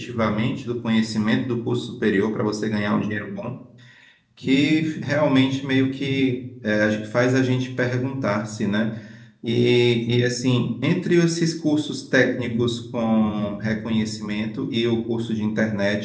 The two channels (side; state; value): both; identical; correlation 1.00